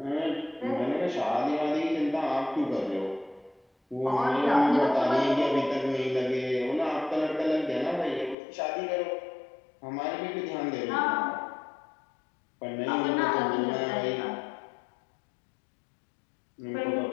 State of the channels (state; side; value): drops out; right; at 8.3 s